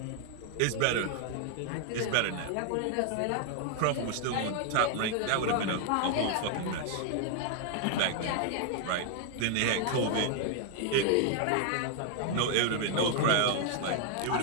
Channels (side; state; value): both; different; correlation 0.00